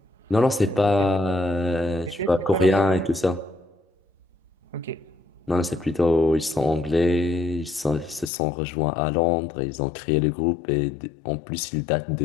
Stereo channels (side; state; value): right; drops out; at 8.3 s